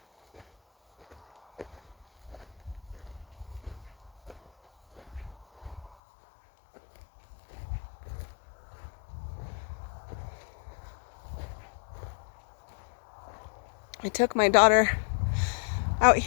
I took my daughter out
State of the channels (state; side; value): drops out; right; at 5.9 s